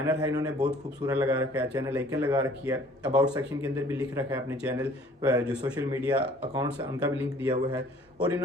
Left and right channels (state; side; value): normal; both; correlation 0.54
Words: है इन्होंने बहुत खूबसूरत लगा रखा है, चैनल आइकन लगा रखी है, अबाउट सेक्शन के अंदर भी लिख रखा है अपने चैनल जो सोशल मीडिया अकाउंट्स है उनका भी लिंक दिया हुआ है और